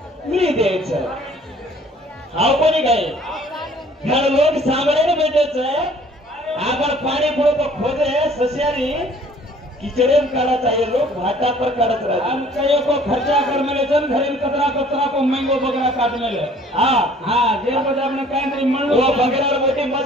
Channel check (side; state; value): both; normal; correlation 0.54